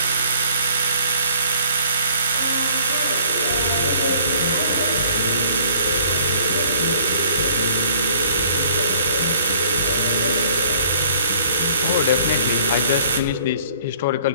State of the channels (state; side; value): inverted; both; correlation -0.57